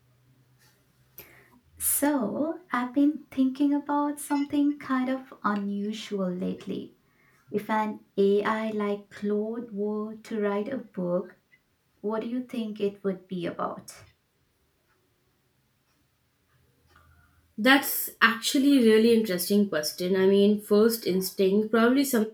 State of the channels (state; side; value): identical; both; correlation 1.00